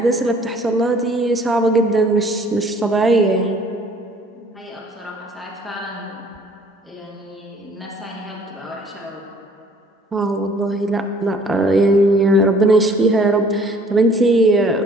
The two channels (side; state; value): both; normal; correlation 0.56